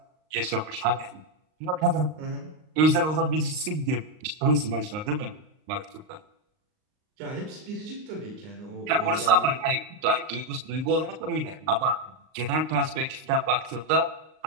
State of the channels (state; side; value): late; left; 39 ms